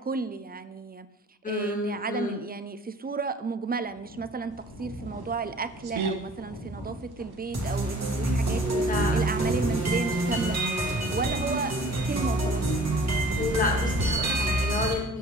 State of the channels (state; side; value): normal; both; correlation 0.49